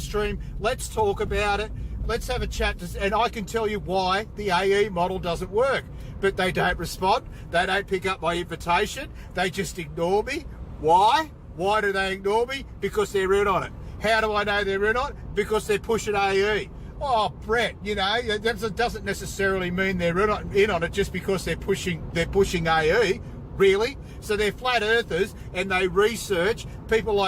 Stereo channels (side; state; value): both; identical; correlation 1.00